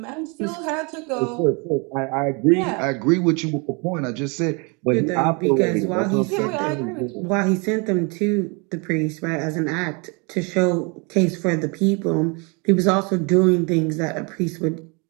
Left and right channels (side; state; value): left; quieter; 31.7 dB